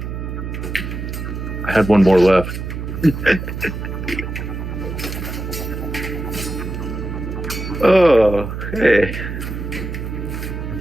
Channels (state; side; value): noise; right; hum, 6 dB below the sound